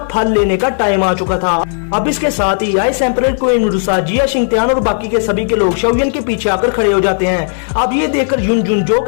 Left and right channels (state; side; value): silent; right; digital silence